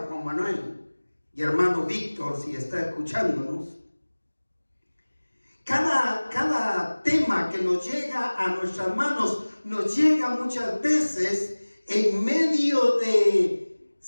Juan Manuel y hermano Víctor, si está escuchándonos, cada tema que nos llega a nuestras manos nos llega muchas veces en medio de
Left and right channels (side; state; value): both; inverted; correlation -1.00